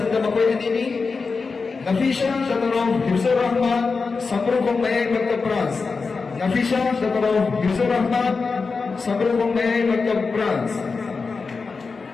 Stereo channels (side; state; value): right; quieter; 4.6 dB